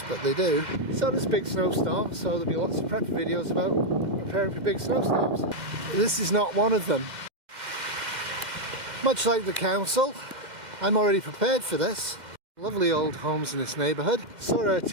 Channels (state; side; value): late; left; 2.1 ms